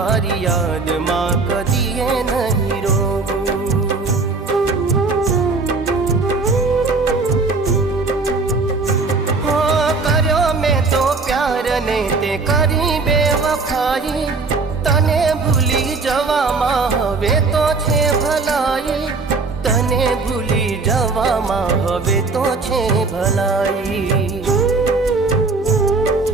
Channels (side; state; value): left; quieter; 4.0 dB